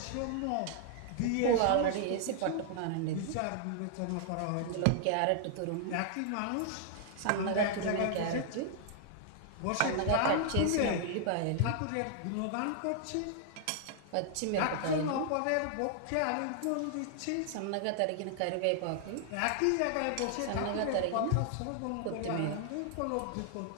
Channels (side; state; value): both; different; correlation -0.01